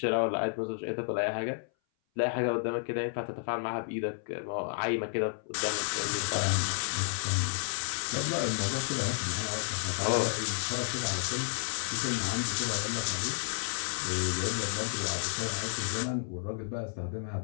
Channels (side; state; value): right; silent; 57 dB below the other